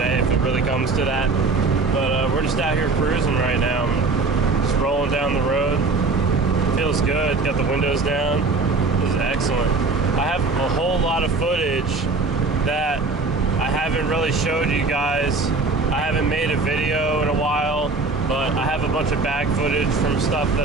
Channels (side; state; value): left; quieter; 3.9 dB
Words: if it really comes to that. But we're just out here cruising right now. Just rolling down the road. Feels good. Got the windows down. This is excellent. I have a whole lot of footage that I haven't really showed you guys. I haven't made a video in a while, but I have a bunch of bag footage from stuff